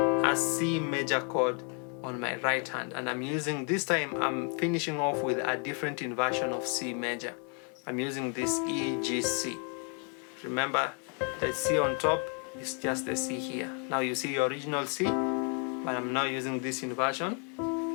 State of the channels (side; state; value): right; quieter; 38.8 dB